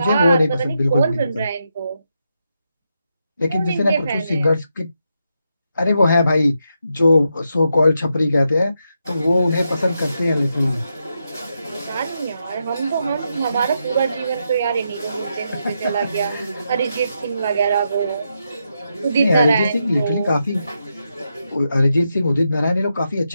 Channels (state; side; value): inverted; both; correlation -0.84